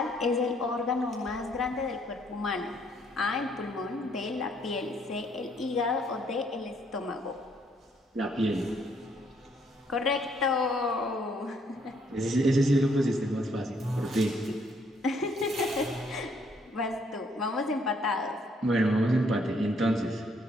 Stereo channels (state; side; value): normal; both; correlation 0.68